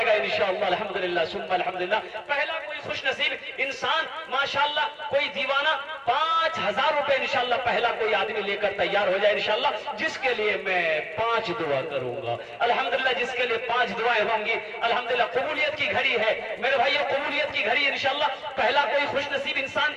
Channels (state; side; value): identical; both; correlation 1.00